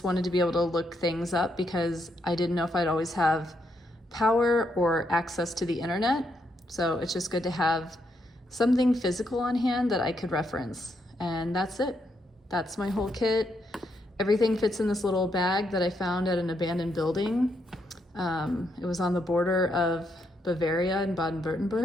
wanted to be able to look things up because I didn't know if I'd always have power or access to the internet. So it's just good to have something physical on hand that I could reference. And that's it. That's my whole kit. Everything fits in this little bag that I found at an abandoned building. It was on the border of Bavaria and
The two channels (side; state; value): both; normal; correlation 0.78